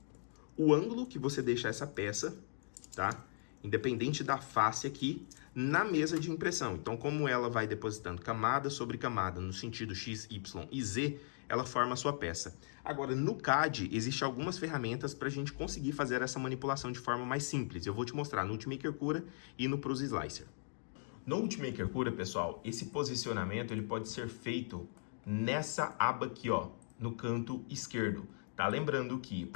o ângulo que você deixa essa peça, tá? Independente da face aqui, na mesa de impressão. Então, como ela vai depositando camada sobre camada no sentido X, Y e Z, ela forma a sua peça. Agora, no CAD, existem algumas ferramentas para a gente conseguir fazer essa manipulação de forma mais simples. Eu vou te mostrar no Ultimaker Cura e no Prusa Slicer. No Ultimaker Cura, pessoal, esse posicionamento ele pode ser feito nessa aba aqui, ó, no canto esquerdo. Tá? Lembrando que,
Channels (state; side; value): silent; right; digital silence